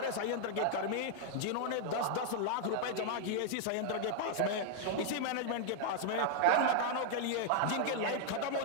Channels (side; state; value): both; different; correlation -0.01